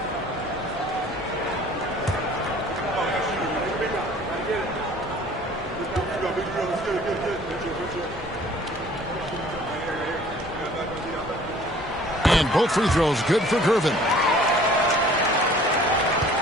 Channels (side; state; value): both; normal; correlation 0.52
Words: And both free throws good for Gervin.